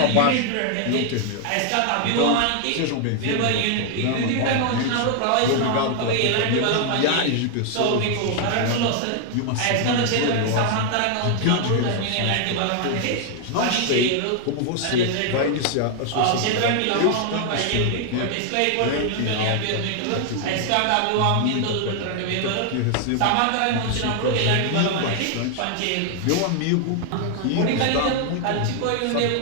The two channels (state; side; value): different; both; correlation 0.00